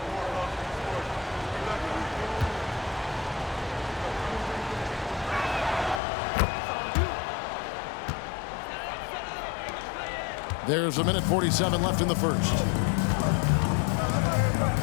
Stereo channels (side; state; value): right; drops out; at 6.0 s